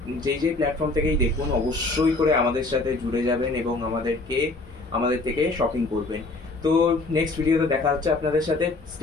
যেই প্ল্যাটফর্ম থেকেই দেখুন অবশ্যই করে আমাদের সাথে জুড়ে যাবেন এবং আমাদের থেকে শপিং করবেন তো নেক্সট ভিডিওতে দেখা হচ্ছে আপনাদের সাথে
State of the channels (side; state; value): right; quieter; 3.2 dB